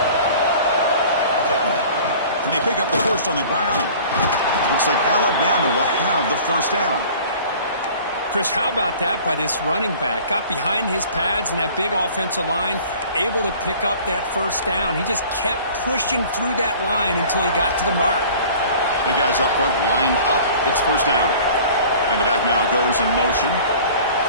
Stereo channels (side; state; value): both; inverted; correlation -0.46